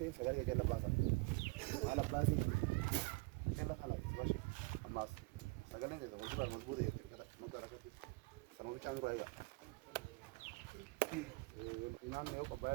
sagale jalla basa ala basi jalla khala bashi amas sagale ne zawo ba mazbure yake kada magara kati sanu changu raya inan ne ko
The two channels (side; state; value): left; quieter; 25.6 dB